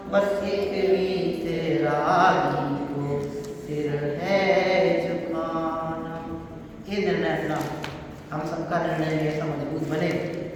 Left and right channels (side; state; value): both; identical; correlation 1.00